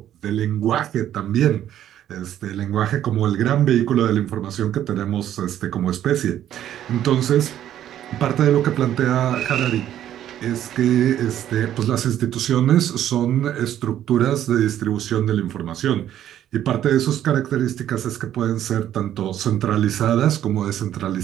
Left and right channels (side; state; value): left; quieter; 11.3 dB